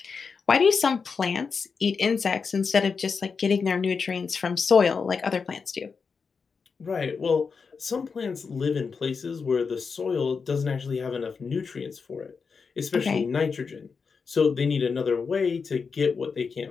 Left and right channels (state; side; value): quieter; right; 5.3 dB